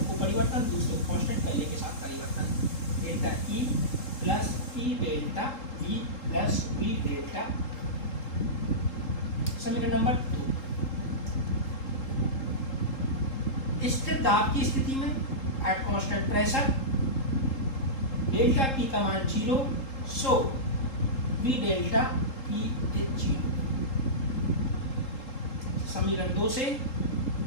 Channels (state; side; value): late; right; 3.8 ms